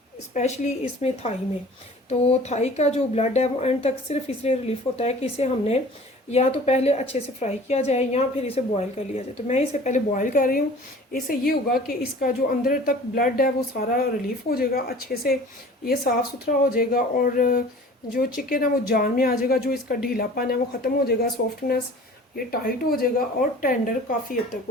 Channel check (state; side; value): normal; both; correlation 0.45